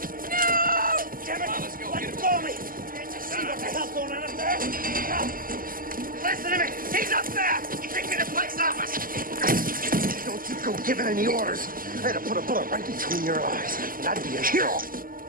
No! Damn it! Come on, let's go. Let go of me! Can't you see what the hell's going on up there? No. Listen to me! He's up there! Take me to the police office! Don't you go giving any orders. I had to put a bullet right between your eyes, and I'd be a hero.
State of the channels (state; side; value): late; left; 0.41 ms